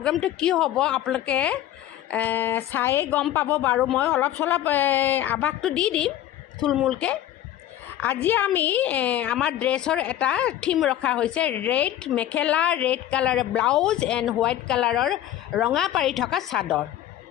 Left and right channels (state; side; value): quieter; right; 12.4 dB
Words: কি হ'ব আপোনালোকে চায়ে গম পাব বাৰু। মই অলপ চলপ আভাসটো দি দিম থুলমূলকৈ। আজি আমি আমাৰ ড্ৰেছৰ এটা থিম ৰখা হৈছে, ৰেড মেখেলা, ৰেড কালাৰৰ ব্লাউজ এণ্ড হোৱাইট কালাৰৰ ৰঙা পাৰি থকা চাদৰ